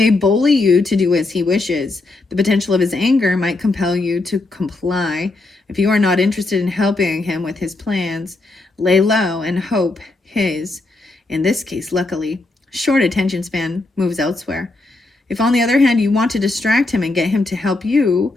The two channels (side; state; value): right; quieter; 3.1 dB